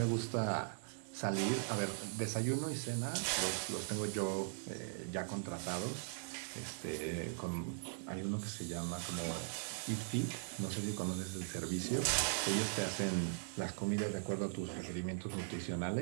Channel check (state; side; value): silent; left; digital silence